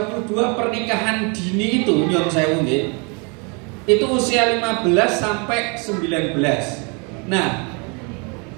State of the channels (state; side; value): quieter; left; 33.1 dB